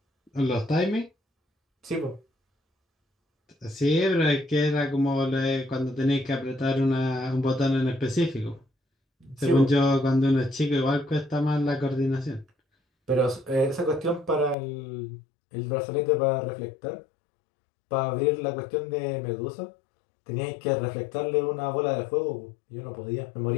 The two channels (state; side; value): drops out; right; at 14.6 s